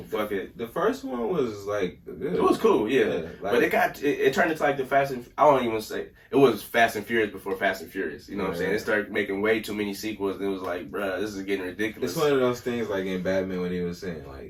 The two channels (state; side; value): identical; both; correlation 1.00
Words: fuck it. The first one was like good. It was cool, but it turned into like the Fast and I won't even say it was Fast and Furious before Fast and Furious. You know what I'm saying? It started making way too many sequels. And it was like, bruh, this is getting ridiculous. It's one of those things like in Batman when he was saying